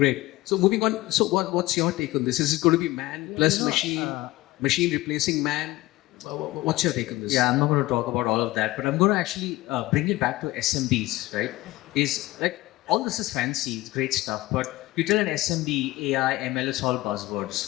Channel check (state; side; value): quieter; right; 18.6 dB